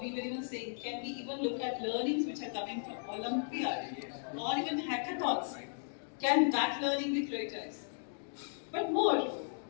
we were even saying, can we even look at learnings which are coming from Olympiad or even hackathons? Can that learning be prioritized? But more,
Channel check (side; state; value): right; silent; digital silence